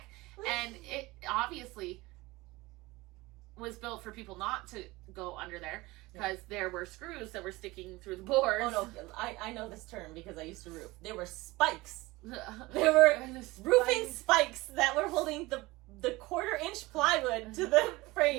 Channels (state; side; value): quieter; left; 21.1 dB